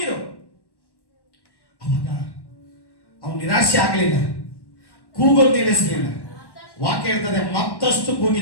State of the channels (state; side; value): late; right; 1.1 ms